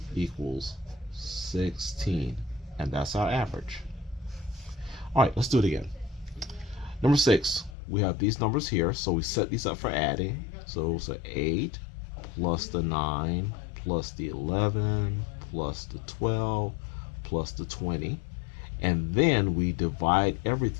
equals 16. And that's our average. All right, let's do it again. Number 6, we have these numbers here. So we set these up for adding. So it's 8 plus the 9 plus the 11 plus the 12 plus the 20. And then we divide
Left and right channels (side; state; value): right; drops out; at 7.8 s